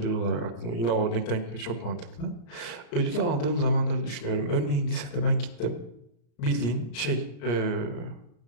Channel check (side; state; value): right; late; 34 ms